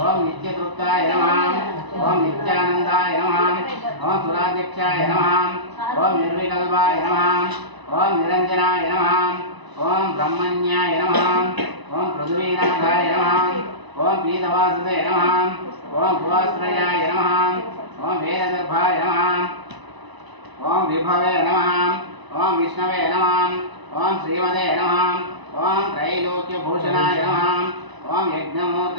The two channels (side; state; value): left; late; 1.0 ms